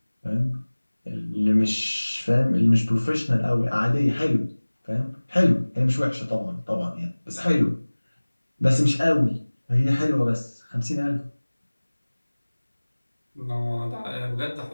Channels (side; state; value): both; inverted; correlation -1.00